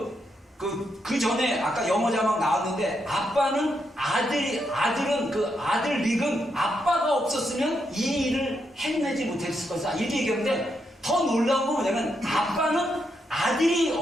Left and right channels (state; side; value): normal; both; correlation 0.81